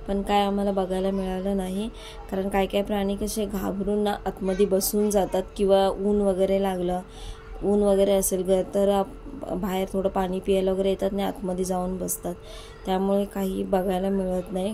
पण काय आम्हाला बघायला मिळालं नाही, कारण काय काय प्राणी कसे घाबरून ना आतमध्ये बसून जातात, किंवा ऊन वगैरे लागलं, ऊन वगैरे असेल तर बाहेर थोडं पाणी प्यायला वगैरे येतात आणि आतमध्ये जाऊन बसतात, त्यामुळे काही बघायला मिळत नाही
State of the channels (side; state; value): both; identical; correlation 1.00